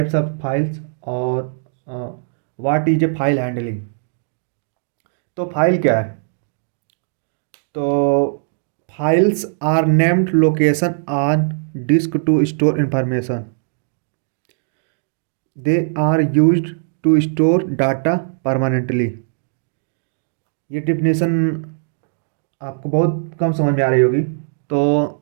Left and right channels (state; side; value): silent; left; digital silence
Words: ऑफ फाइल्स, और what is a file handling. तो फाइल क्या है? तो files are named location on disk to store information. They are used to store data permanently. ये डिफिनेशन आपको बहुत कम समझ में आ रही होगी। तो